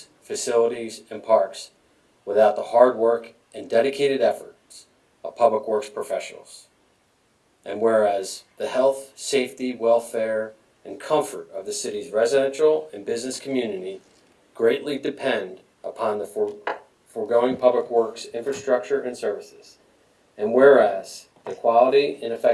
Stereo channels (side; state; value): both; identical; correlation 1.00